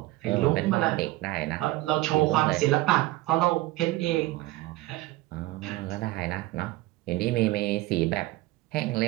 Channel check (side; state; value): left; quieter; 18.3 dB